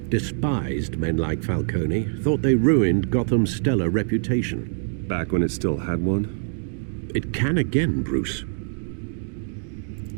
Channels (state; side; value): silent; left; digital silence